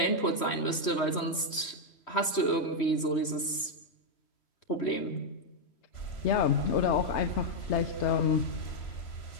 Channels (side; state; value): right; late; 3.1 ms